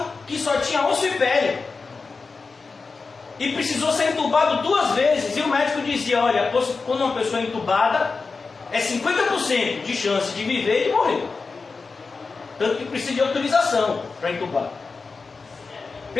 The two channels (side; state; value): right; quieter; 4.4 dB